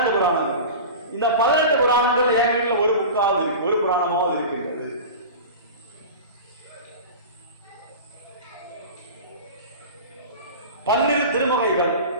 புராணங்கள். இந்த 18 புராணங்கள் என் வீட்டில் ஒரு புக்காவது இருக்கு, ஒரு புராணமாவது இருக்கின்றது. பன்னிரு திருமகைகள்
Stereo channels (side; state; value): both; inverted; correlation -0.32